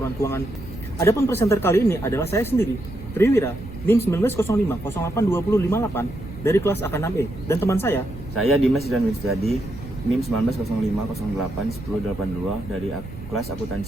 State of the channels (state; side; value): noise; right; rumble, 15 dB below the sound